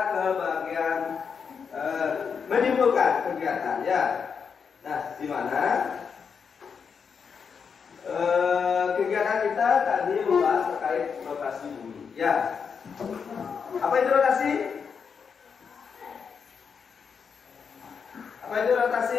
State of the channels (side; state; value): right; quieter; 6.2 dB